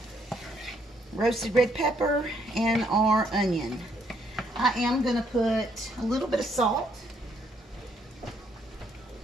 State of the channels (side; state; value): both; normal; correlation 0.70